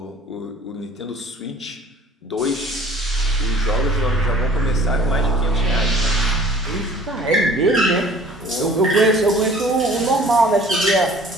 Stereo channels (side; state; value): both; normal; correlation 0.50